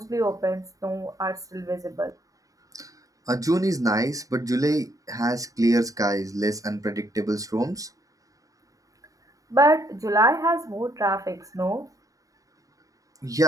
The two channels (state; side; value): late; left; 0.16 ms